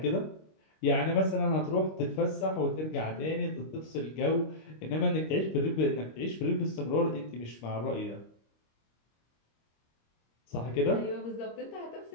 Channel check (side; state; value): right; late; 26 ms